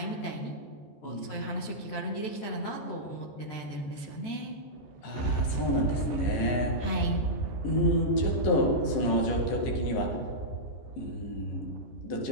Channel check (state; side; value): late; right; 14 ms